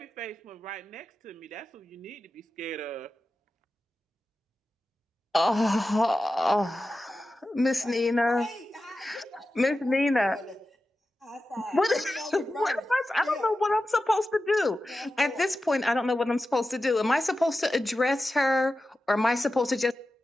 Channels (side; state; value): both; normal; correlation 0.93